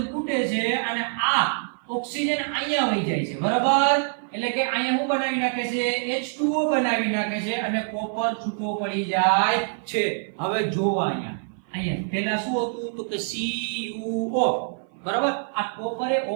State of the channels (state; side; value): silent; left; 56 dB below the other